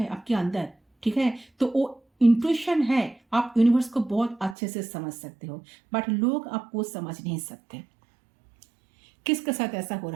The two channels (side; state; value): left; drops out; at 4.5 s